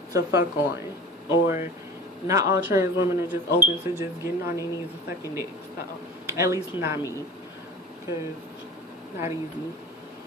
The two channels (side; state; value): both; normal; correlation 0.37